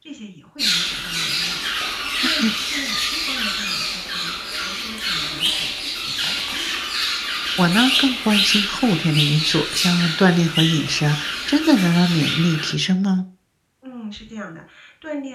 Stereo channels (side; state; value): both; identical; correlation 1.00